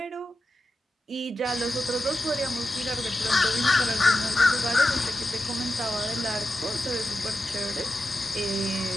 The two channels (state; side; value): normal; both; correlation 0.91